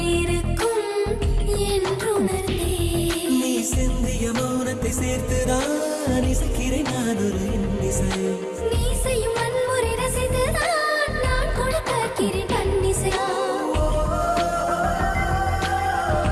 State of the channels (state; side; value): identical; both; correlation 1.00